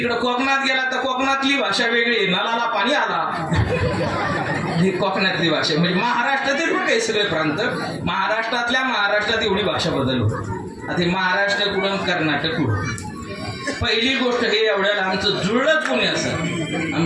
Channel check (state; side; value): identical; both; correlation 1.00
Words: कोकणात गेला तर कोकणातली भाषा वेगळी, नलाला पाणी आला, ही कोकणातली भाषा. म्हणजे महाराष्ट्रातील पण काही सगळे प्रांत, महाराष्ट्रात एवढी भाषा बदलली. आता महाराष्ट्र कुठून कर्नाटक कुठून. पहिली गोष्ट हे एवढ्याला आमचं जुळलंच कोणी असं,